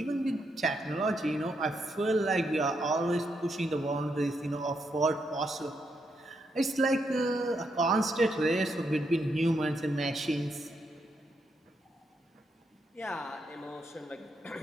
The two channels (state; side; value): normal; both; correlation 0.80